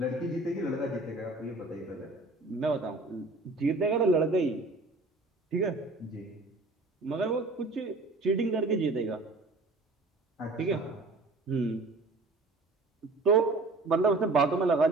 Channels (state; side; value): quieter; left; 3.2 dB